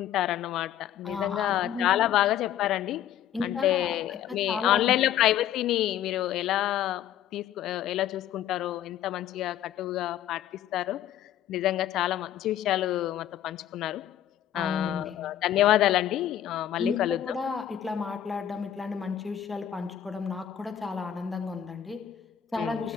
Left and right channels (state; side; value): quieter; right; 11.0 dB